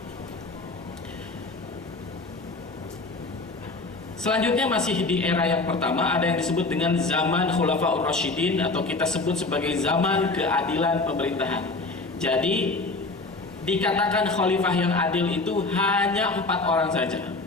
Selanjutnya masih di era yang pertama, ada yang disebut dengan zaman Khulafaur Rasyidin, atau kita sebut sebagai zaman keadilan pemerintahan. Jadi dikatakan khalifah yang adil itu hanya 4 orang saja.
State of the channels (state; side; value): quieter; right; 3.4 dB